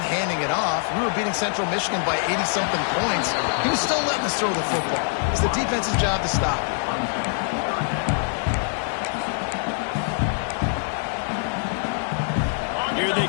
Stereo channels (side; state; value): right; silent; 60 dB below the other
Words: handing it off. We were beating Central Michigan by 80-something points. He was still letting us throw the football. It's the defense's job to stop. Here they